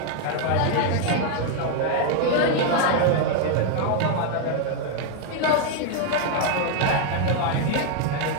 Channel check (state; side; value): different; both; correlation 0.01